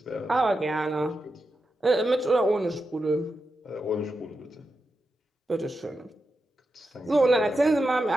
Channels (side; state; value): both; normal; correlation 0.89